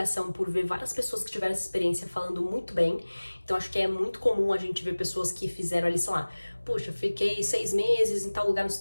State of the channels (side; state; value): both; inverted; correlation -1.00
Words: por ver várias pessoas que tiveram essa experiência falando muito bem. Então, acho que é muito comum a gente ver pessoas que fizeram ali, sei lá, puxa, fiquei 6 meses em tal lugar nos